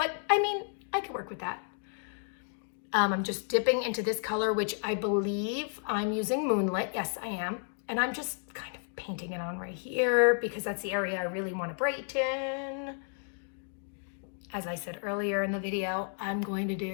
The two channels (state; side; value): silent; right; 56 dB below the other